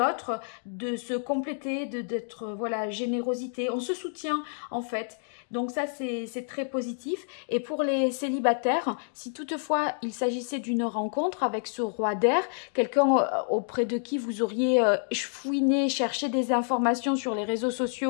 de se compléter, d'être, voilà, générosité. On se soutient en fait. Donc ça, c'est très positif. Et pour les célibataires, si toutefois il s'agissait d'une rencontre avec ce roi d'air, quelqu'un auprès de qui vous auriez fouiné, cherché des informations sur les réseaux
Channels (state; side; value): silent; right; digital silence